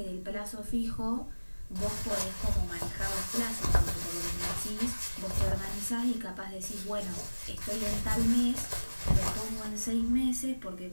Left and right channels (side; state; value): both; inverted; correlation -1.00